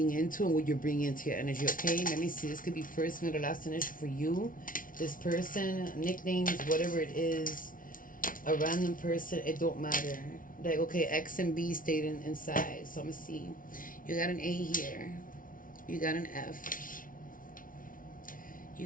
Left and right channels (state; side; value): late; right; 0.39 ms